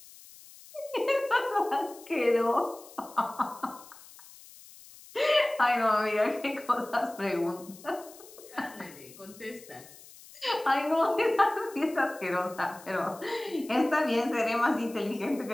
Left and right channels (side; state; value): left; noise; hiss, 20 dB below the sound